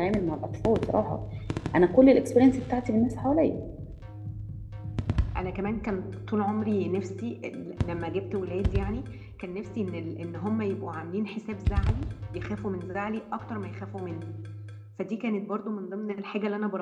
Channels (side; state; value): both; identical; correlation 1.00